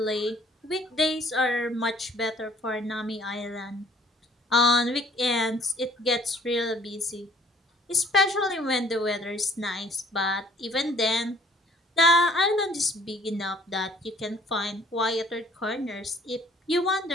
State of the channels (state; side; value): normal; both; correlation 0.57